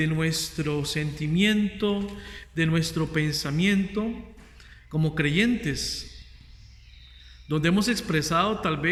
nuestro sentimiento, de nuestro pensamiento como creyentes. donde hemos expresado tal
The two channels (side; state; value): both; identical; correlation 1.00